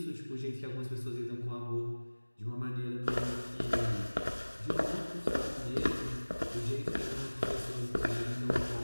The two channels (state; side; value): inverted; both; correlation -1.00